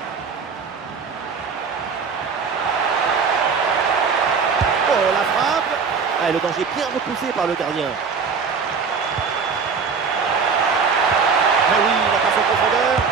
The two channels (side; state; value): left; quieter; 5.6 dB